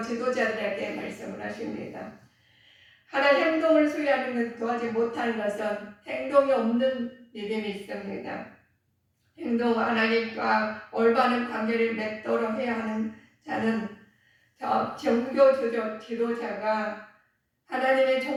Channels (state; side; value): identical; both; correlation 1.00